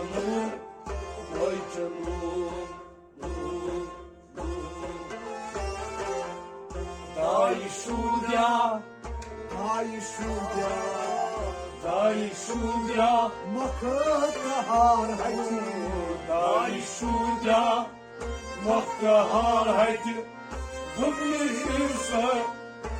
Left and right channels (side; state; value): both; identical; correlation 1.00